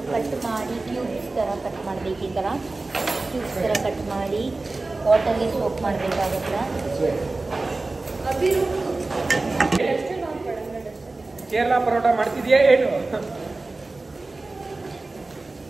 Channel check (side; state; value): left; quieter; 3.3 dB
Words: ಕಟ್ ಮಾಡಿ ಕ್ಯೂಬ್ಸ್ ಥರ ಕಟ್ ಮಾಡಬೇಕು. ಈ ಥರ ಕ್ಯೂಬ್ಸ್ ಥರ ಕಟ್ ಮಾಡಿ ವಾಟರ್ಗೆ ಸೋಪ್ ಮಾಡಬೇಕಾಗುತ್ತೆ. ಕೇರಳ ಪರೋಟ ಮಾಡ್ತಿದ್ಯಾ ಏನು?